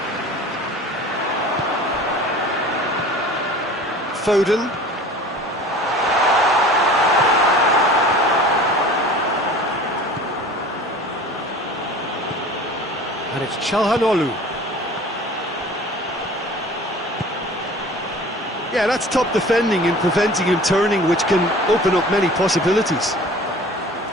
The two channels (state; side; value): normal; both; correlation 0.43